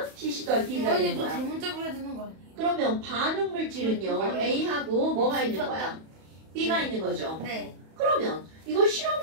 CC 더하기 DB가 되는 거야. 대문자로 해야 되는 거 아니에요? 그러면 반응 물질은요. A하고 뭐가 있는 거야? B가 있는 거죠. 네. 그러면 이걸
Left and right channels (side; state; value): left; late; 31 ms